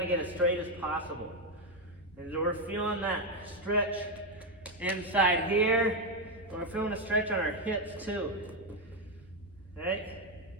to get as straight as possible. And so we're feeling that stretch inside here. We're feeling a stretch on our hips too. Right?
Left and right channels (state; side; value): normal; both; correlation 0.05